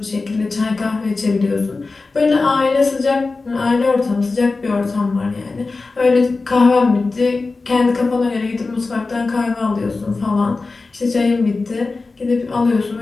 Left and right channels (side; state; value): right; quieter; 3.8 dB